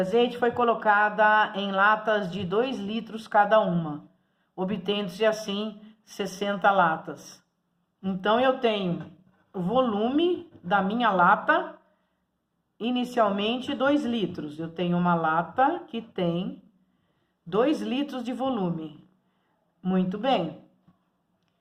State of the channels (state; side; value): identical; both; correlation 1.00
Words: foi colocada em latas de 2 litros cada uma, obtendo-se assim 60 latas. Então, eu tenho o volume da minha lata, inicialmente 2 litros. Eu tenho uma lata que tem 2 litros de volume. Muito bem.